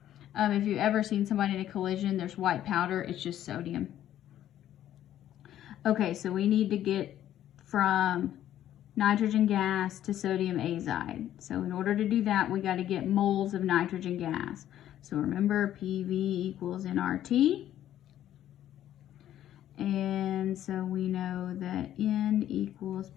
If you've ever seen somebody in a collision, there's white powder, it's just sodium. Okay, so we need to get from nitrogen gas to sodium azide. So in order to do that, we got to get moles of nitrogen gas. So remember, PV equals nRT. And so we know that N equals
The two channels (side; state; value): right; quieter; 11.9 dB